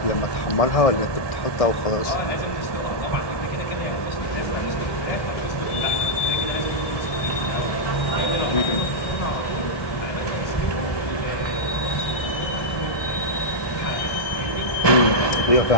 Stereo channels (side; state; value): right; late; 1.2 ms